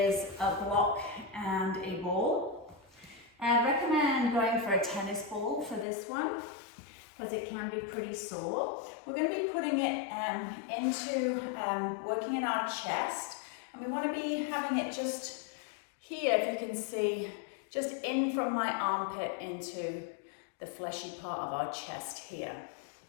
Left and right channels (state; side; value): drops out; right; at 5.9 s